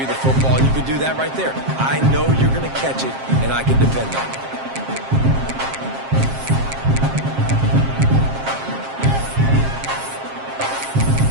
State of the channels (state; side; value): late; left; 7.5 ms